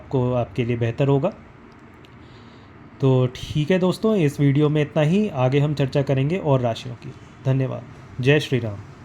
आपके लिए बेहतर होगा। तो ठीक है दोस्तों, इस वीडियो में इतना ही। आगे हम चर्चा करेंगे और राशियों की। धन्यवाद। जय श्री राम।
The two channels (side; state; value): both; identical; correlation 1.00